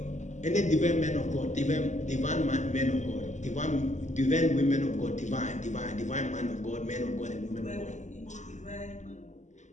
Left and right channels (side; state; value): right; late; 0.34 ms